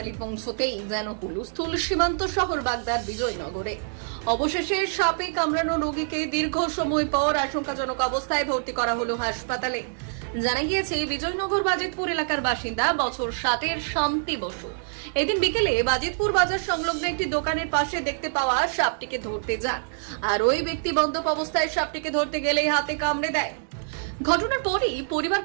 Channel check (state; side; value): silent; left; digital silence